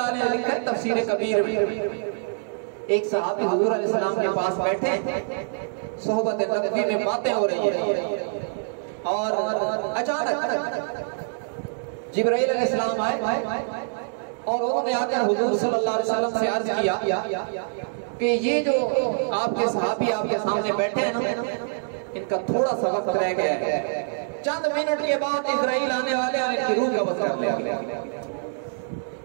علیہ لکھتے ہیں تفسیر کبیر میں ایک صحابی حضور علیہ السلام کے پاس بیٹھے, صحبت نبوی میں باتیں ہو رہی ہیں اور اچانک جبرائیل علیہ السلام آئے اور انہوں نے آ کر حضور صلی اللہ علیہ وسلم سے عرض کیا کہ یہ جو آپ کے صحابی آپ کے سامنے بیٹھے ہیں نا, ان کا تھوڑا سا وقت رہ گیا ہے, چند منٹ کے بعد اسرائیل آنے والے اور ان کی روح قبض کر لیا.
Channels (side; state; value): left; silent; 62 dB below the other